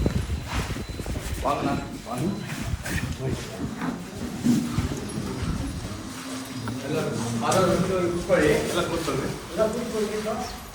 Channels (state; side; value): identical; both; correlation 1.00